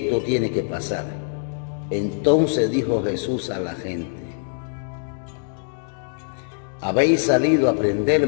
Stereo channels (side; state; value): right; silent; digital silence